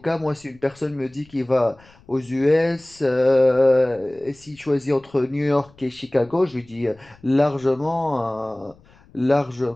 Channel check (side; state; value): left; noise; rumble, 28 dB below the sound